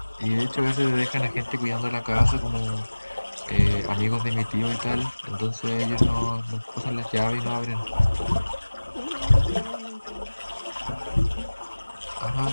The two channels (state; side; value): inverted; both; correlation -1.00